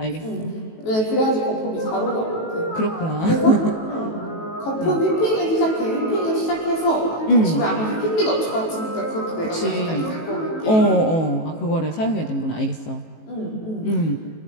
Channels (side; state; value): right; late; 18 ms